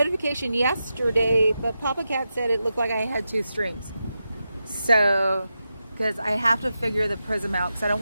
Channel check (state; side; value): inverted; both; correlation -0.89